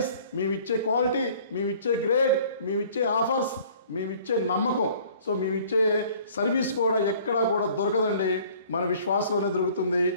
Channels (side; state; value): both; inverted; correlation -0.53